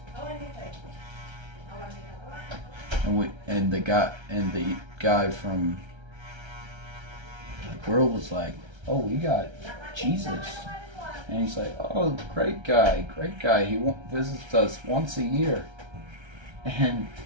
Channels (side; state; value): left; late; 1.3 ms